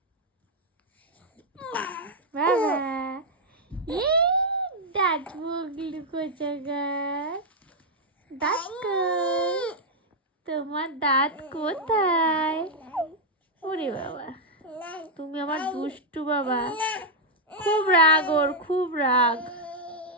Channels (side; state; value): both; normal; correlation -0.02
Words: বাবা দাঁত মুগলু কোথাকার, দাঁত কই? তোমার দাঁত কোথায়? ওরে বাবা, তুমি আমার দুষ্টু বাবা। খুব রাগ ওর, খুব রাগ।